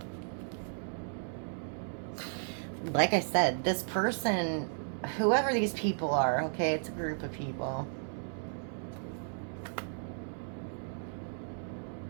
Like I said, this person, whoever these people are, okay, it's a group of people.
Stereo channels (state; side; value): silent; left; 55 dB below the other